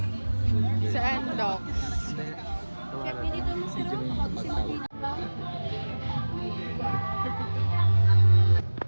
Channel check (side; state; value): both; inverted; correlation -1.00